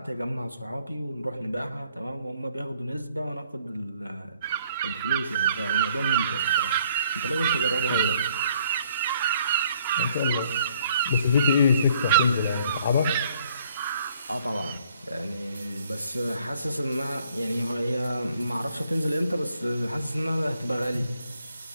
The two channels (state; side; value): inverted; both; correlation -0.64